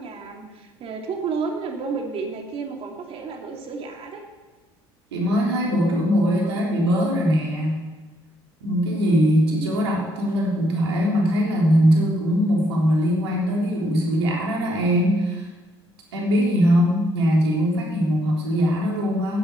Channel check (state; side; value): normal; both; correlation 0.73